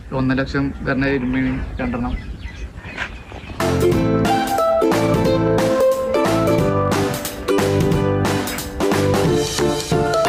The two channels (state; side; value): identical; both; correlation 1.00